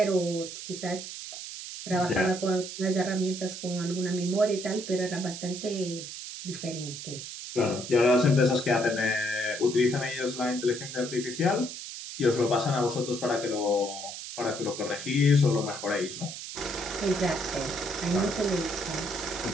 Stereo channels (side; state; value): right; noise; hiss, 9 dB below the sound